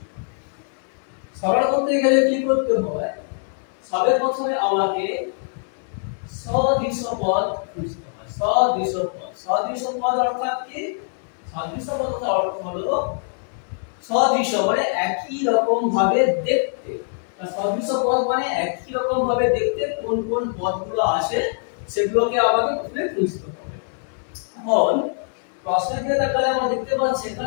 সরল করতে গেলে কি করতে হয়? সবে প্রথমে আমাকে সদৃশ পদ খুঁজতে হয়। সদৃশ পদ অর্থাৎ কি? সদৃশ পদের অর্থ হলো সদৃশ মানে একই রকম ভাবে দেখতে। সদৃশ পদ মানে একই রকম ভাবে দেখতে কোন কোন পদগুলো আছে সেগুলোকে আমাকে প্রথমে খুঁজতে হবে। এখন প্রশ্নের দিকে তাকালে আমরা দেখতে পাচ্ছি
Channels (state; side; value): silent; right; 63 dB below the other